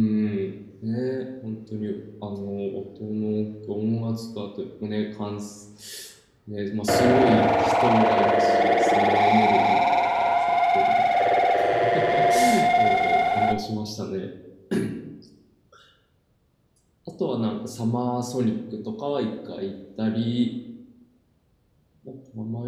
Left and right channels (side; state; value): both; identical; correlation 1.00